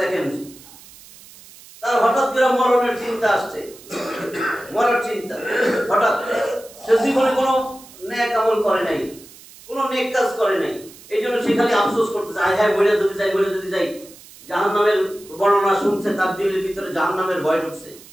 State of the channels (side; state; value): right; noise; hiss, 21 dB below the sound